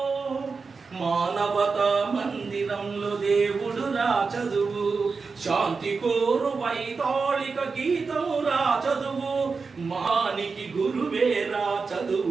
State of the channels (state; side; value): quieter; left; 4.7 dB